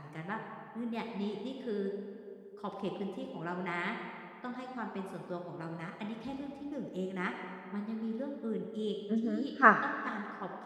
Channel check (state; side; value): identical; both; correlation 1.00